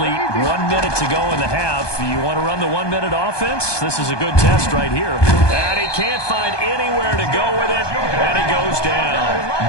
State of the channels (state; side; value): late; right; 1.2 ms